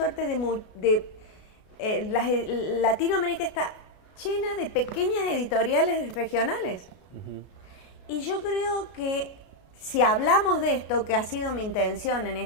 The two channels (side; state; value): right; late; 33 ms